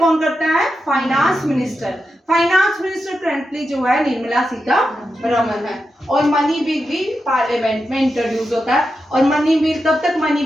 करता है? Finance minister. Finance minister currently जो है निर्मला सीतारमण है, और मनी बिल भी पार्लियामेंट में इंट्रोड्यूस होता है, और मनी बिल तब तक मनी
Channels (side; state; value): both; normal; correlation 0.88